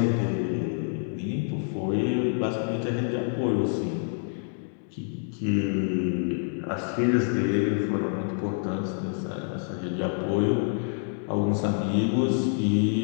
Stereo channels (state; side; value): silent; right; 60 dB below the other